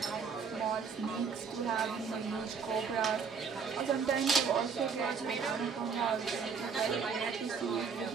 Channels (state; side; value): quieter; left; 5.8 dB